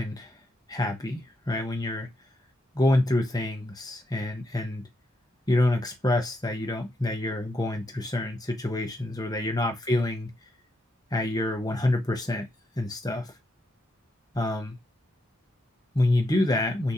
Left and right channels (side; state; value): both; normal; correlation 0.81